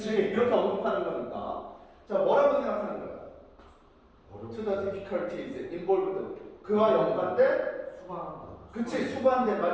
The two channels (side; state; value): both; identical; correlation 1.00